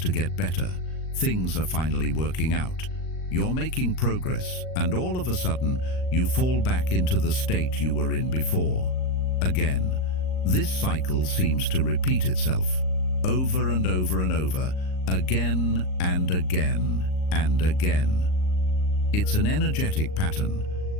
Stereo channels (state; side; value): late; right; 38 ms